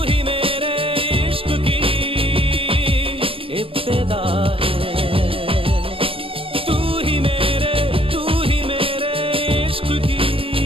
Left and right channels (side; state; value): left; late; 0.26 ms